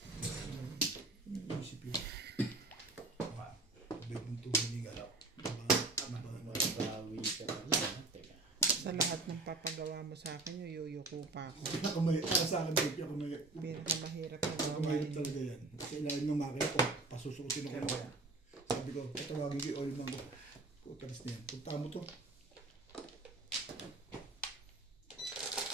Ano yung isip yun? Bite mo ito, hindi galaw. Sa lahat ng papagawa mo sa akin, yuyuko pa ako. Ako may, para sa akin, baby, ako may, Pinakamahirap na ako may talaga yan. Sa ilalim ng makina ko, pasusukin ako. Kaya mo yan. Sabi ko, patawagin ko yung oil man ko. Putalis na yan. Punta mo to.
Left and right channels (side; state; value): left; quieter; 3.1 dB